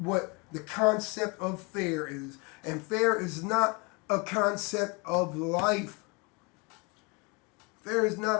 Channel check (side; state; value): right; quieter; 29.4 dB